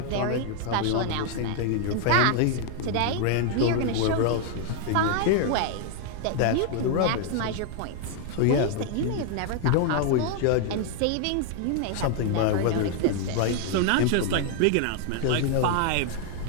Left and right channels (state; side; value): different; both; correlation 0.00